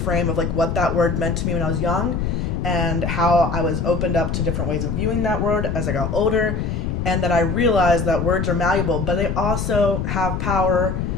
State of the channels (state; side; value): noise; left; rumble, 1 dB below the sound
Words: of like what that word meant to me when I was young, and how I was opened up to different ways of viewing that word as I got older, and that I realized that words are malleable, but they also have power